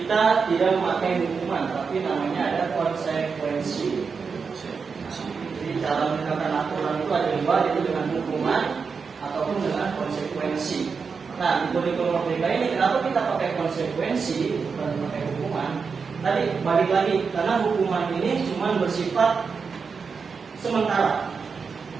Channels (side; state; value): left; quieter; 5.4 dB